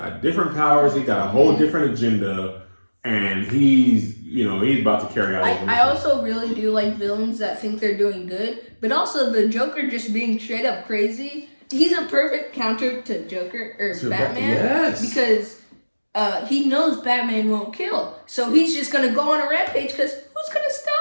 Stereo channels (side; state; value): both; inverted; correlation -1.00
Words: different powers. He got a whole different agenda. And he's about to carry out. I also really do like villains that think they're doing good, but also the Joker just being straight up crazy. He's a perfect counter to Joker or Batman. Yes. Because he knows Batman won't kill, so he's just gonna go on a rampage. Because who's gonna